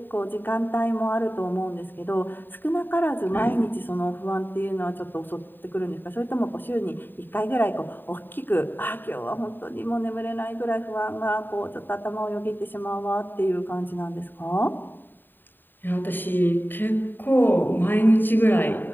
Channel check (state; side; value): late; right; 0.093 ms